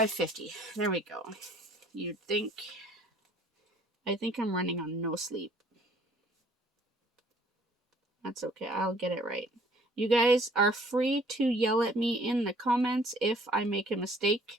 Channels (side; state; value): both; normal; correlation 0.57